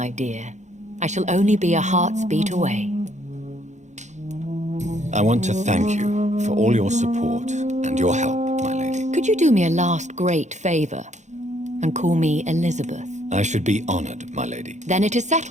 dear. I shall only be a heart's beat away. I want to thank you for all your support and your help, my lady. Could you do me a last great favor and call me Elizabeth? I should be honored, my lady. Then it is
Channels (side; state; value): left; late; 0.34 ms